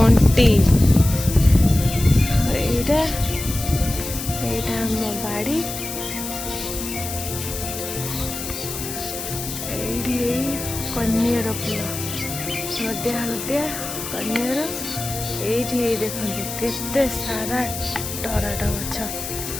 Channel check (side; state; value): left; noise; hiss, 7 dB below the sound